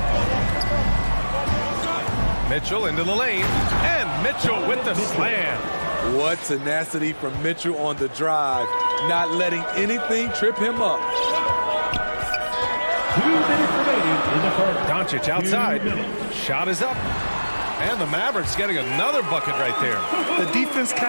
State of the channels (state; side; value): inverted; both; correlation -1.00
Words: Mitchell into the lane, and Mitchell with the slam. What tenacity from Mitchell on the drive, not letting anything trip him up. 2 minutes remaining in the first. Doncic outside. Shot is up. And the Mavericks getting another bucket right there. The defense